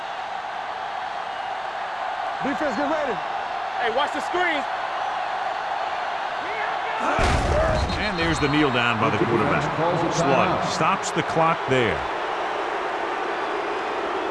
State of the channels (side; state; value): both; identical; correlation 1.00